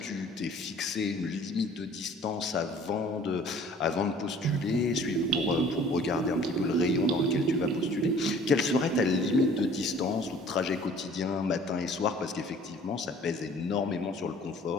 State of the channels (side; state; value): both; normal; correlation 0.51